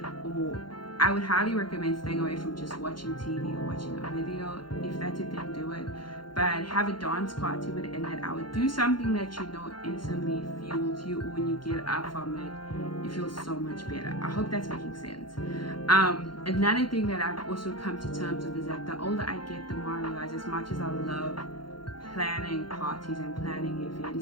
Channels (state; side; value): late; right; 0.72 ms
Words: Or I would highly recommend staying away from just watching TV or watching a video. If that's your thing, do it. But have a dance party within that hour. Do something that you know instantly fuels you, or when you get up from it, you feel so much better. I hope that's making sense. Another thing that I've also come to terms with is that the older I get, the more I realize, as much as I love planning parties and planning